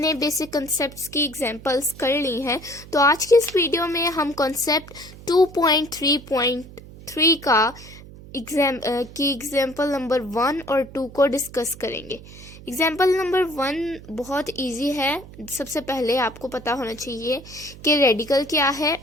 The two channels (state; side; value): noise; right; hum, 17 dB below the sound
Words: बेसिक कॉन्सेप्ट्स की एग्जाम्पल्स कर ली हैं। तो आज की इस वीडियो में हम कॉन्सेप्ट 2.3.3 का एग्जाम्पल नंबर 1 और 2 को डिस्कस करेंगे। एग्जाम्पल नंबर 1 बहुत इजी है। सबसे पहले आपको पता होना चाहिए कि रेडिकल क्या है